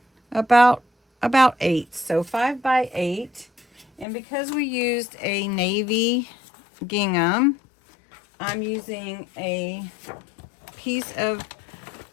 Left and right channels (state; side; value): drops out; right; at 4.0 s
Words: about 8. So 5 by 8. And because we used a navy gingham, I'm using a piece of